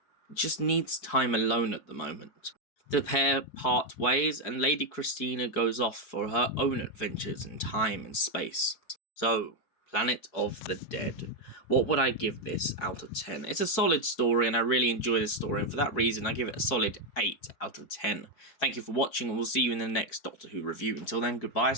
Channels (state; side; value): late; right; 4.6 ms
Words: just needs time alone at the moment. The pair part ways and Lady Christina goes off for her own adventures in time and space. So, Planet of the Dead. What would I give this out of 10? It's a solid story and I really enjoy this story, and for that reason I give it a solid 8 out of 10. Thank you for watching and we'll see you in the next Doctor Who review. Until then, goodbye,